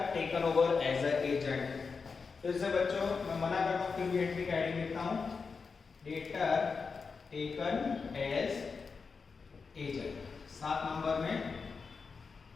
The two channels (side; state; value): right; quieter; 5.0 dB